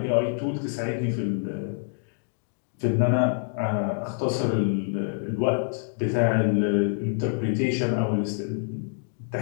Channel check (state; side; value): silent; right; 59 dB below the other